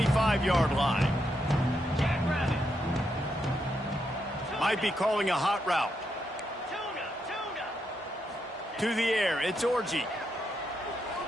line. Might be calling a hot route. To the air, it's Orji.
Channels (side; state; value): both; normal; correlation 0.81